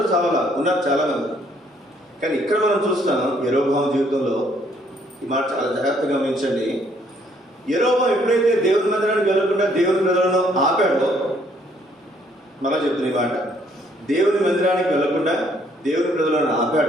ఉన్నారు చాలా మంది. కానీ ఇక్కడ మనం చూస్తాం యెరోబోము జీవితంలో ఈ మాట చాలా జాగ్రత్తగా గమనించండి. యెరోబోము ఎప్పుడైతే దేవుని మందిరానికి వెళ్ళకుండా దేవుని ప్రజలను ఆపాడో, మళ్ళా చెప్తున్న ఈ మాట, దేవుని మందిరానికి వెళ్ళకుండా దేవుని ప్రజలను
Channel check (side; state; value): both; normal; correlation 0.66